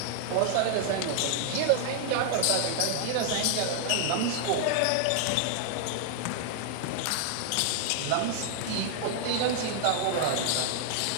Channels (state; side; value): different; both; correlation 0.00